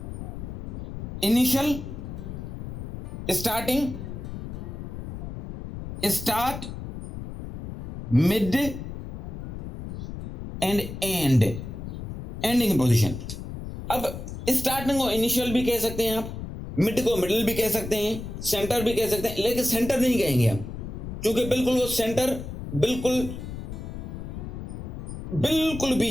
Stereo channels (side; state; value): left; noise; rumble, 8 dB below the sound